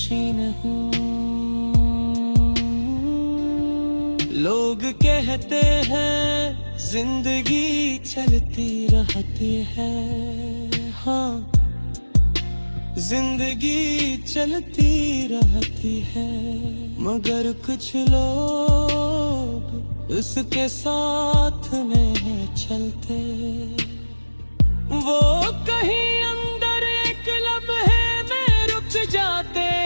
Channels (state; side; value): inverted; both; correlation -1.00